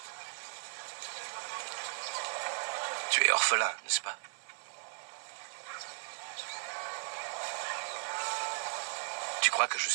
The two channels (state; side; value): silent; left; 54 dB below the other